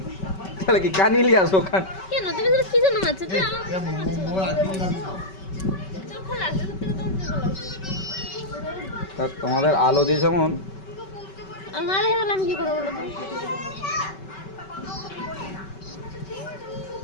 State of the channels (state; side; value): late; right; 5.2 ms